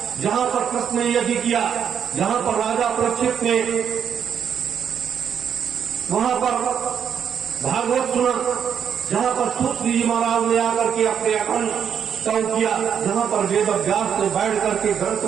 जहां पर कृष्ण ने यज्ञ किया, जहां पर राजा परीक्षित ने वहां पर भागवत सुना, जहां पर सूत जी महाराज ने आकर के अपने अखंड स्तव किया, जहां पर वेद व्यास ने बैठ करके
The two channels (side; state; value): left; quieter; 8.0 dB